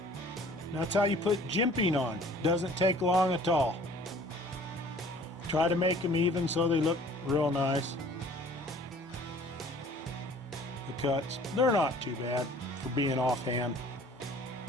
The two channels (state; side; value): normal; both; correlation 0.51